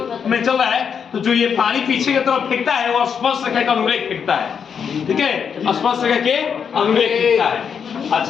में चल रहा है तो जो ये पानी पीछे की तरफ फेंकता है वो स्पर्श रेखा का अनुरेख फेंकता है। ठीक है, स्पर्श रेखा के अनुरेख फेंकता है।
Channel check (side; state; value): right; quieter; 7.0 dB